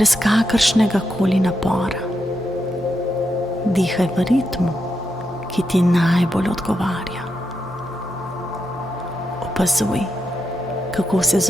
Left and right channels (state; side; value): noise; left; hum, 21 dB below the sound